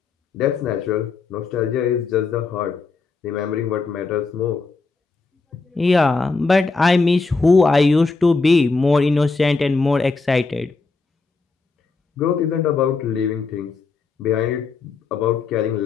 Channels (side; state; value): right; quieter; 4.2 dB